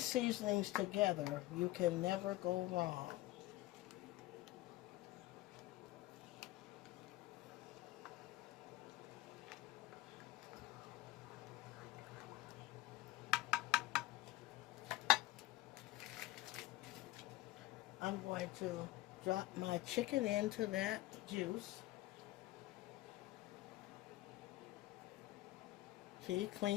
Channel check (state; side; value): quieter; right; 17.7 dB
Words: seasonings together, you can never go wrong. I'm going to drop my chicken into that juice. See,